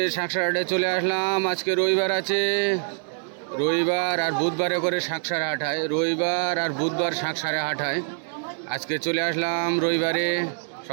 শাঁকসারহাটে চলে আসলাম। আজকে রবিবার আছে, রবিবার আর বুধবারে করে শাঁকসার হাট হয়। রবিবার আর বুধবার শাঁকসারে হাট হয়। আজকে চলে আসলাম রবিবারে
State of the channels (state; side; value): silent; left; digital silence